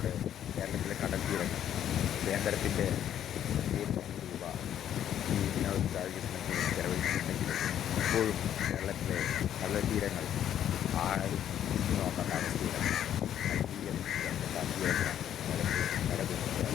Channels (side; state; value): right; quieter; 10.4 dB